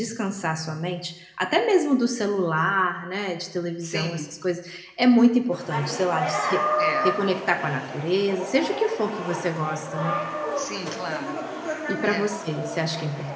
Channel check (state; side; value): identical; both; correlation 1.00